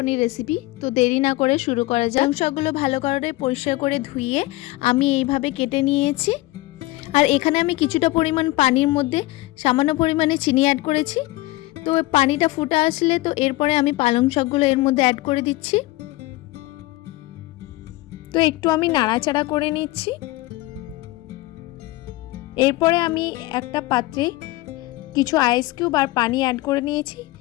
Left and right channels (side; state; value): right; quieter; 19.7 dB